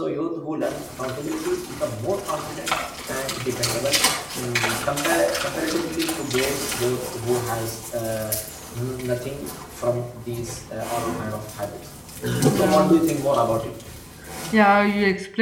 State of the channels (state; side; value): identical; both; correlation 1.00